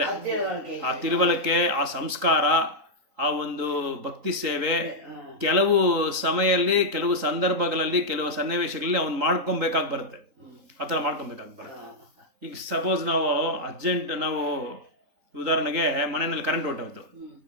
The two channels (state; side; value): late; left; 3.9 ms